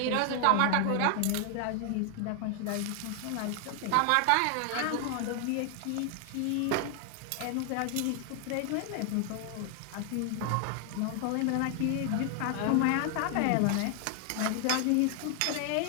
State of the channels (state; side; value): different; both; correlation 0.00